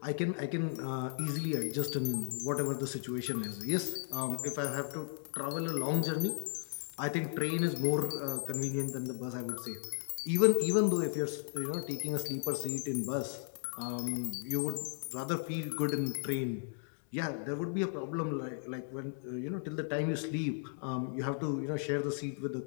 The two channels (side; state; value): right; silent; digital silence